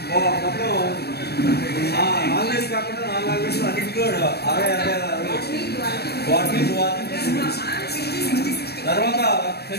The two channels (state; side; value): late; right; 0.47 ms